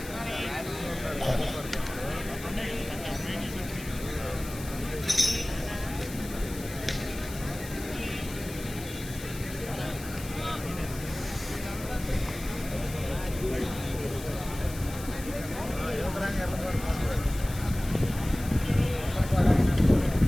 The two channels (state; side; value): noise; left; hiss, 13 dB below the sound